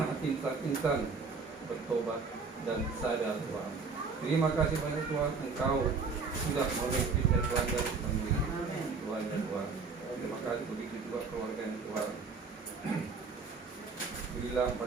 insan-insan bertobat dan sadar Tuhan. Terima kasih banyak Tuhan, Engkau sudah memimpinnya Tuhan dan menemui Tuhan dan Tuhan. Terima kasih begitu juga keluarga yang Tuhan. Berilah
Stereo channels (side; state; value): left; quieter; 4.7 dB